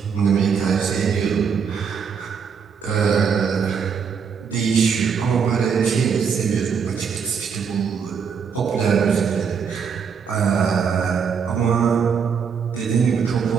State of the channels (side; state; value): left; quieter; 6.5 dB